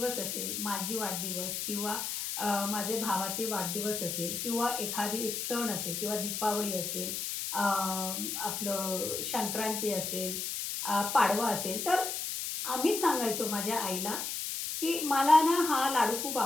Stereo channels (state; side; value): noise; left; hiss, 3 dB below the sound